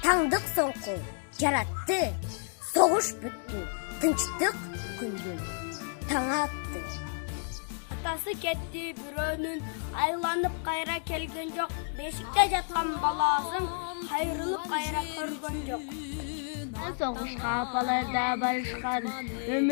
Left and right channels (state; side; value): silent; right; 57 dB below the other